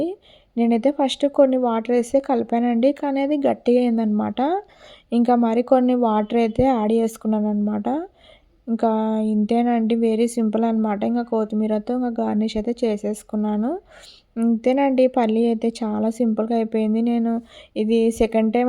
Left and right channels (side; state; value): both; identical; correlation 1.00